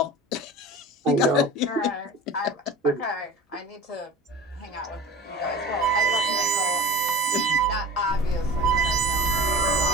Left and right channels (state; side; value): normal; both; correlation 0.37